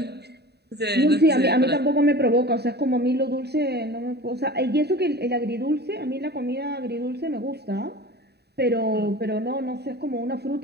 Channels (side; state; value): left; late; 0.48 ms